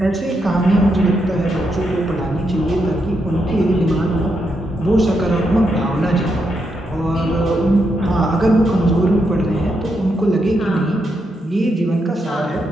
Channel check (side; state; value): both; normal; correlation 0.81